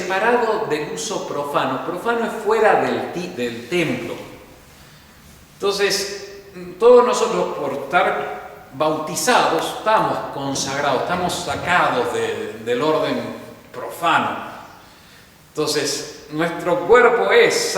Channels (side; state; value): both; identical; correlation 1.00